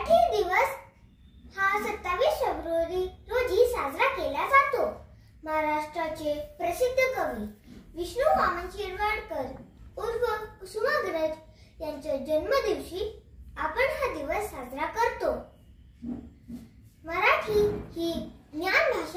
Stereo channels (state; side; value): identical; both; correlation 1.00